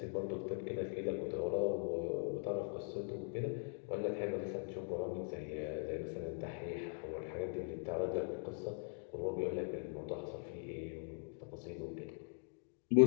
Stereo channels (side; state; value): right; silent; 50 dB below the other